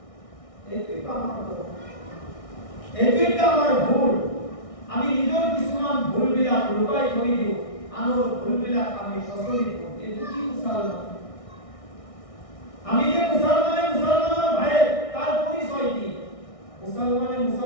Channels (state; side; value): late; right; 1.6 ms